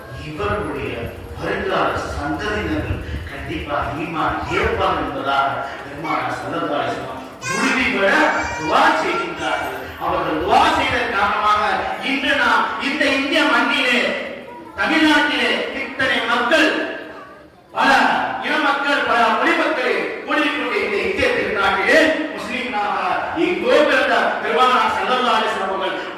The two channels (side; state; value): both; identical; correlation 1.00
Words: இவர்களுடைய வருங்கால சந்ததியினர்கள் கண்டிப்பாக ஈமான் ஏற்பார் என்பதாக பெருமானார் ஸல்லல்லாஹு அலைஹி வஸல்லம் உறுதிபட துஆ செய்கின்றார்கள். அவர்கள் துஆ செய்த காரணமாக இன்று நாம் இந்த இந்திய மண்ணிலே, தமிழ்நாட்டிலே இத்தனை மக்கள், பல இன மக்கள், பல மொழி மக்கள் கூடிக்கொண்டு இந்த இந்திய திருநாட்டிலே முஸ்லிம்களாக எங்கோ பிறந்த பெருமானார் ஸல்லல்லாஹு அலைஹி வஸல்லம் அவர்கள்